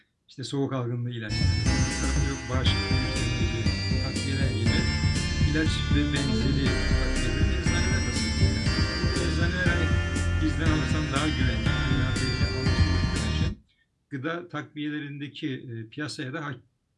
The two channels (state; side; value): identical; both; correlation 1.00